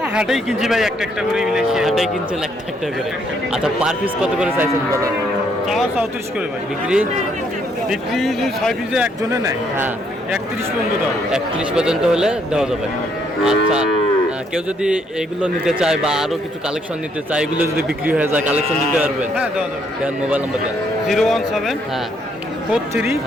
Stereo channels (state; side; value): normal; both; correlation 0.70